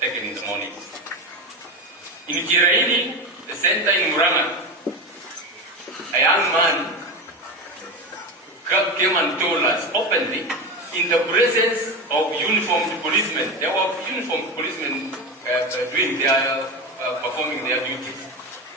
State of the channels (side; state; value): both; normal; correlation 0.21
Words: taken in the morning. In Kiraini, the center in Maraga, a young man came and told us openly, in the presence of uniformed policemen. There were uniformed policemen performing their duties.